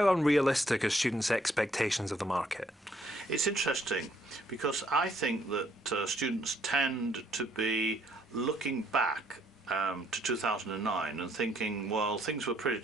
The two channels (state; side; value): normal; both; correlation 0.68